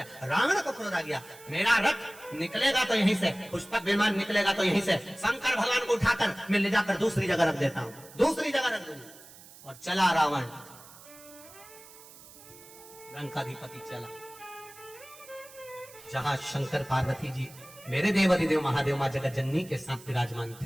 रावण को क्रोध आ गया, मेरा रथ निकलेगा तो यहीं से, पुष्पक विमान निकलेगा तो यहीं से, शंकर भगवान को उठाकर मैं ले जाकर दूसरी जगह रख देता हूं, दूसरी जगह रख दूंगा। और चला रावण, लंकाधिपति चला जहां शंकर पार्वती जी, मेरे देव अधिदेव महादेव मां जगज्जननी के साथ विराजमान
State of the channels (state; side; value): noise; right; hiss, 20 dB below the sound